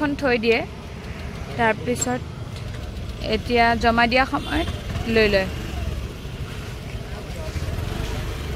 থৈ দিয়ে তাৰ পিছত এতিয়া জমা দিয়া সময়ত লৈ লয়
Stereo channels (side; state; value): both; identical; correlation 1.00